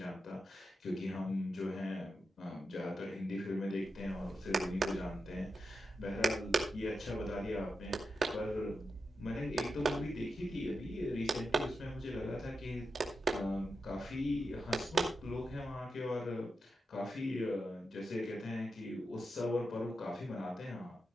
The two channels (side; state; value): both; normal; correlation 0.88